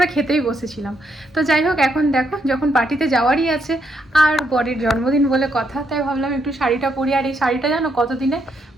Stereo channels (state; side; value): normal; both; correlation 0.77